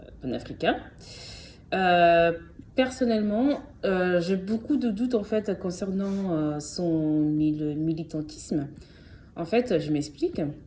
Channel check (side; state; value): both; identical; correlation 1.00